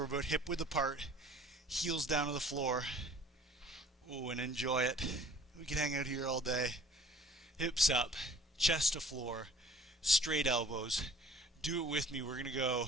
about hip width apart. Heels down to the floor. Ooh, and enjoy it. We can hang out here all day. Hips up, chest to floor, straight elbows. Do it with me. We're going to go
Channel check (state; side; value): normal; both; correlation 0.50